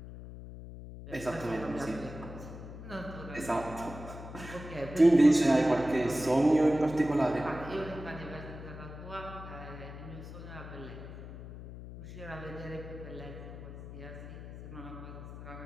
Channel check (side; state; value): left; noise; hum, 12 dB below the sound